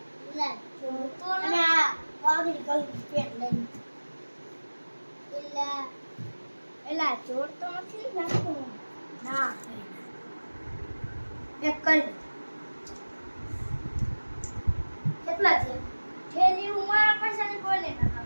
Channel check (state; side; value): inverted; both; correlation -1.00